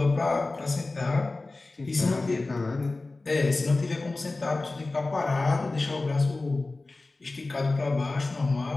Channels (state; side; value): quieter; right; 3.3 dB